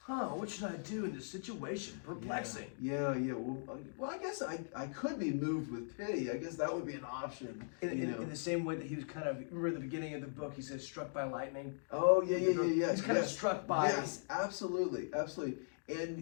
what should I do in this situation? Perplexing. Yeah. Well, I guess I could be moved with pity. I guess that would be an option. In the same way that he was kind of, remember at the beginning of the book, he says, struck by lightning? Oh, yeah. He's kind of struck by... Yes, absolutely. And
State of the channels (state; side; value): silent; right; digital silence